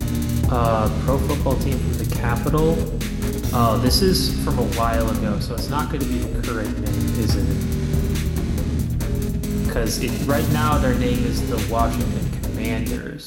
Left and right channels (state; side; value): identical; both; correlation 1.00